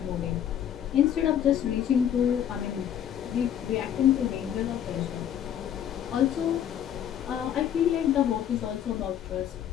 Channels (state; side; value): quieter; right; 9.9 dB